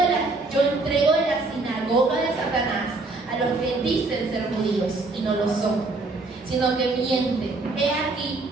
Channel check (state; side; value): quieter; left; 3.4 dB